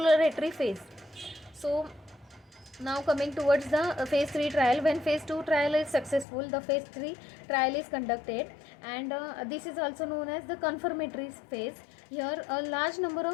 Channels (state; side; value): drops out; right; at 6.2 s